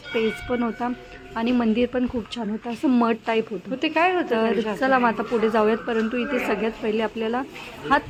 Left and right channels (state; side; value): identical; both; correlation 1.00